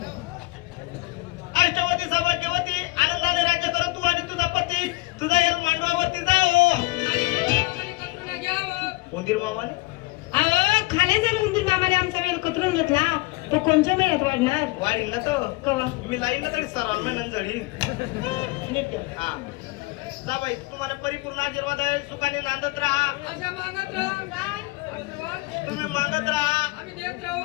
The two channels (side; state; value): right; quieter; 22.4 dB